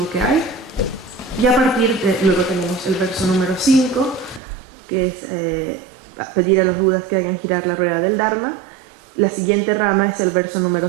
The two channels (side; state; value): left; drops out; at 4.4 s